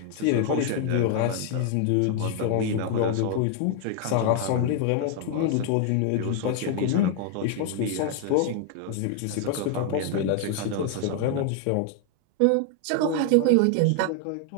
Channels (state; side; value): different; both; correlation 0.00